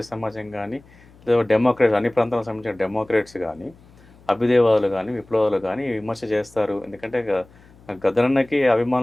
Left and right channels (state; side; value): noise; left; hum, 26 dB below the sound